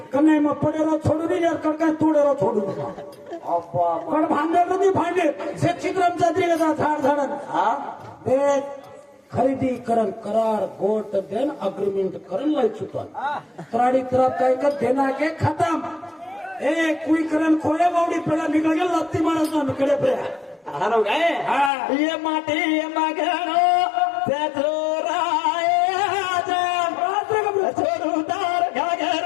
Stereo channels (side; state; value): right; drops out; at 21.7 s